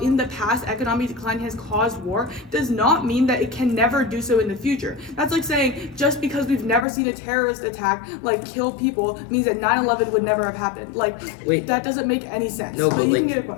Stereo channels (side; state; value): right; drops out; at 6.9 s